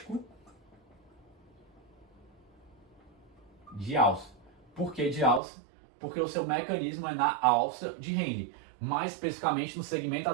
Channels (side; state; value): left; drops out; at 5.4 s